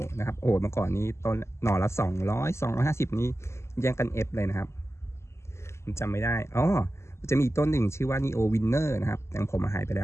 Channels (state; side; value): late; right; 0.13 ms